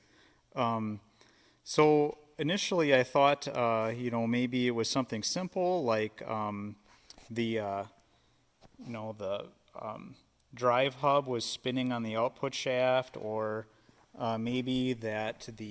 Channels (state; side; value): identical; both; correlation 1.00